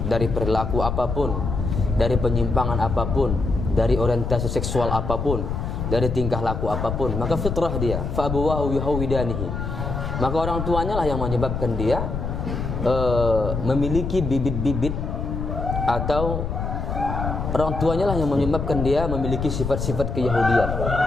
dari perilaku apapun, dari penyimpangan apapun, dari orientasi seksual apapun, dari tingkah laku apapun, maka fitrah dia. Fa abuwahu yuhawidanihi. Maka orang tuanya lah yang menyebabkan dia memiliki bibit-bibit, atau orang tuanya lah yang menyebabkan dia memiliki sifat-sifat keyahudian.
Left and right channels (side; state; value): left; noise; rumble, 3 dB below the sound